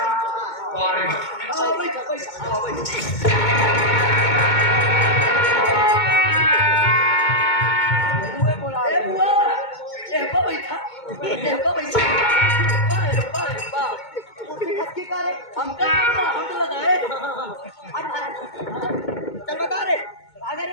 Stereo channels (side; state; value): right; late; 2.2 ms